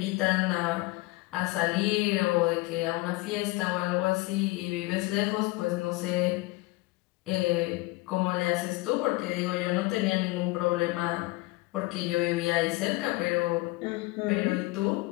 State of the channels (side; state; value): right; quieter; 21.3 dB